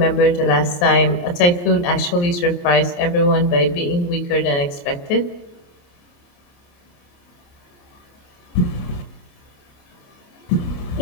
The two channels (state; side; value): late; right; 28 ms